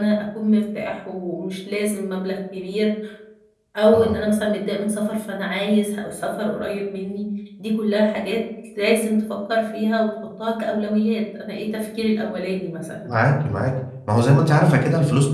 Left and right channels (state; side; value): identical; both; correlation 1.00